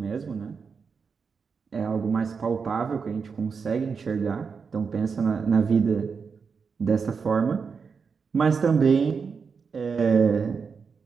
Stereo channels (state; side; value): quieter; left; 5.6 dB